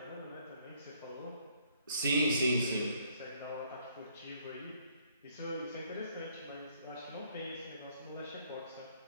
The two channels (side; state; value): both; inverted; correlation -0.65